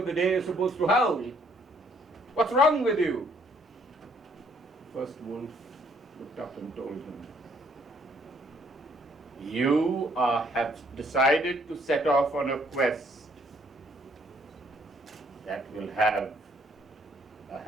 the day you're supposed to howl. What's wrong with you? The first wolf looked up and told him, you have decided to set off on a quest that will have a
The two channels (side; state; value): both; normal; correlation 0.66